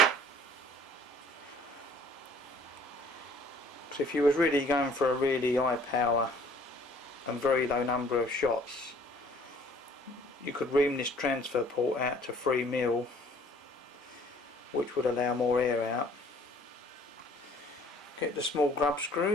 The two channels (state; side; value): normal; both; correlation 0.55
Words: So if you was really going for a really high power and very low number of shots, you could ream this transfer port out to 3mm, which would allow more air out. Get the small grub